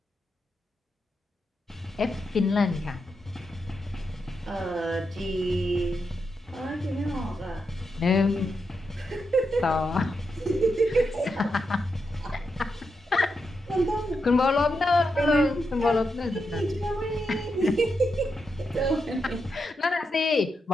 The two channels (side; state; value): both; normal; correlation 0.85